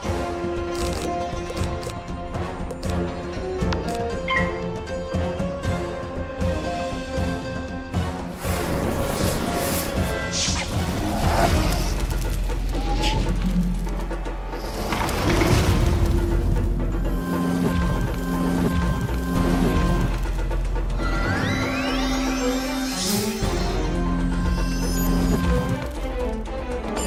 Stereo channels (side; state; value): both; identical; correlation 1.00